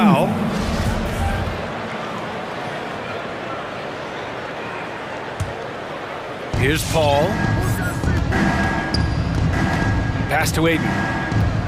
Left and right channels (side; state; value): both; identical; correlation 1.00